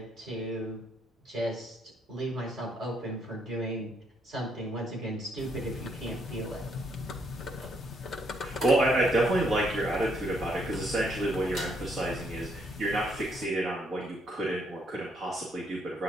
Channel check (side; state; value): both; normal; correlation 0.72